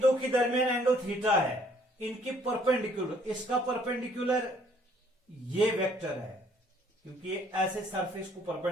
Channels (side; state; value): both; normal; correlation 0.62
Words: के दरमियान एंगल थीटा है, इनके परपेंडिकुलर, इसका परपेंडिकुलर ये वेक्टर है क्योंकि ये ऐसे सरफेस को